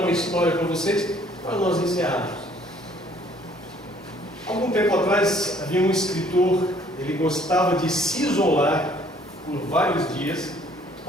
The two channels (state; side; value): normal; both; correlation 0.60